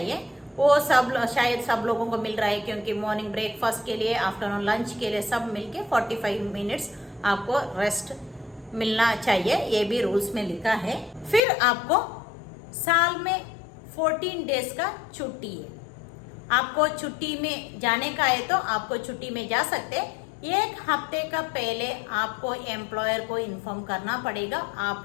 वो शायद सब लोगों को मिल रहा है, क्योंकि मॉर्निंग ब्रेकफास्ट के लिए, आफ्टरनून लंच के लिए सब मिलके 45 मिनट्स आपको रेस्ट मिलना चाहिए, ये भी रूल्स में लिखा है। फिर आपको साल में 14 डेज का छुट्टी है। आपको छुट्टी में जाने का है तो आपको छुट्टी में जा सकते हैं। एक हफ्ते का पहले आपको एम्प्लॉयर को इन्फॉर्म करना पड़ेगा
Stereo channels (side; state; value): right; drops out; at 11.4 s